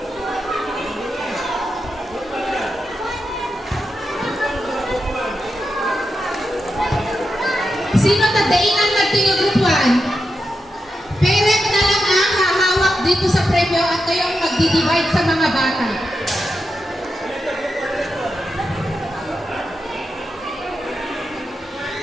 Sino tadainan natin yung group 1? Parent na lang ang hahawak dito sa premyo at kayo ang magdi-divide sa mga bata.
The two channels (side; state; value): both; normal; correlation 0.88